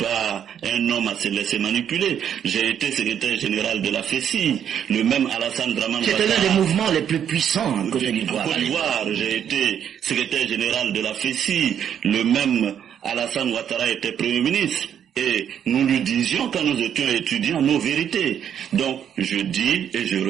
un homme à se laisser manipuler. J'ai été secrétaire général de la FECI, le même Alassane Dramane Ouattara. C'était l'un des mouvements les plus puissants en Côte d'Ivoire. En Côte d'Ivoire, j'ai été secrétaire général de la FECI, le même Alassane Ouattara était Premier ministre. Et nous lui disions quand nous étions étudiants nos vérités. Donc, je dis et je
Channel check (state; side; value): quieter; left; 9.0 dB